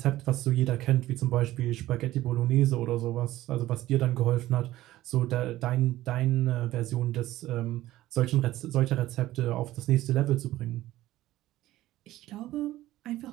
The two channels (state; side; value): quieter; left; 15.6 dB